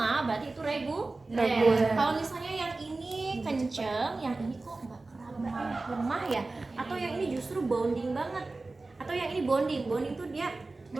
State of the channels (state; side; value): quieter; left; 3.4 dB